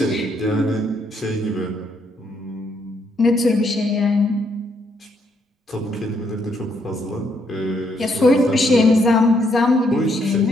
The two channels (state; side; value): normal; both; correlation 0.73